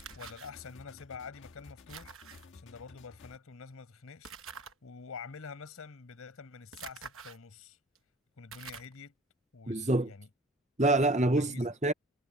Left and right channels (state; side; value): normal; both; correlation 0.47